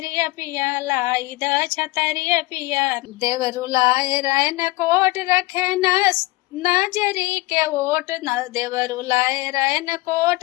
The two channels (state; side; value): quieter; right; 20.8 dB